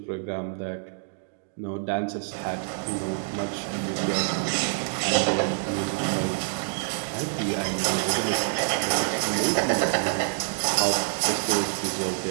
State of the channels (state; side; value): silent; left; digital silence